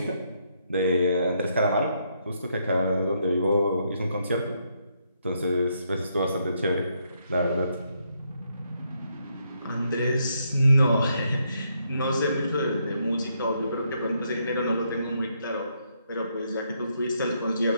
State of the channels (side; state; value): both; inverted; correlation -0.76